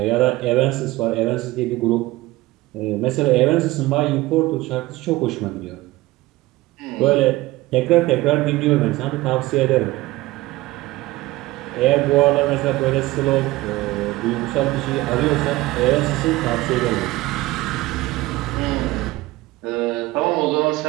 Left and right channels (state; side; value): quieter; left; 18.9 dB